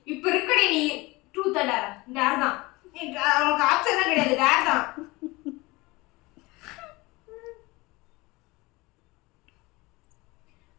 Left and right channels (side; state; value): right; quieter; 22.7 dB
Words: இப்ப இருக்கடி நீ ட்ரூத் டேர் தான் அவனுக்கு ஆப்ஷன் தான் கிடையாது, டேர் தான்.